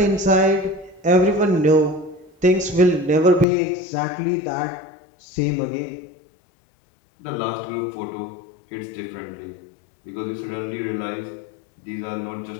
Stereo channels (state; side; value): drops out; right; at 3.5 s